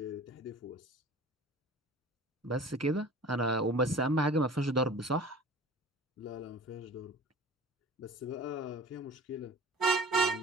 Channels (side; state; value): both; normal; correlation 0.42